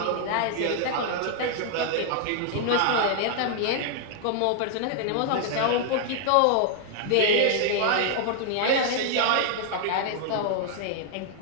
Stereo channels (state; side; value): different; both; correlation 0.00